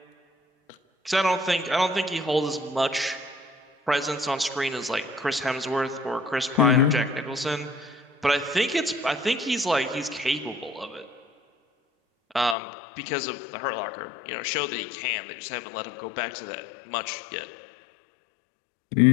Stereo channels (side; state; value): right; drops out; at 12.6 s